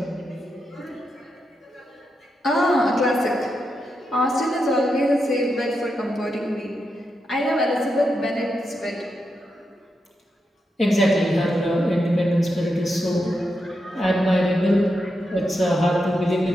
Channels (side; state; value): both; normal; correlation 0.85